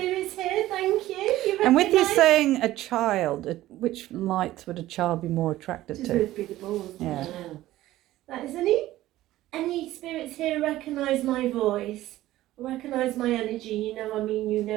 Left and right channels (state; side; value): quieter; left; 15.4 dB